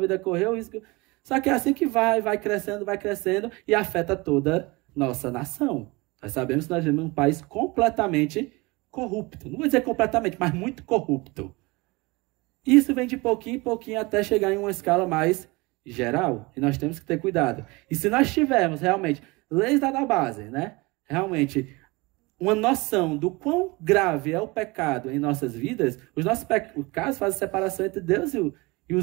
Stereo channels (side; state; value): left; quieter; 24.5 dB